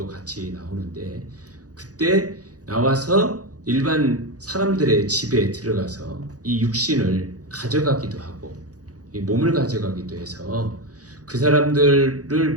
같이 나오는데 그때 나와서 일반 사람들의 집에 들어가서 이 육신을 가져가기도 하고 이 몸을 가져가기도 해서 그 사람들을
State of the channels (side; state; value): left; late; 0.67 ms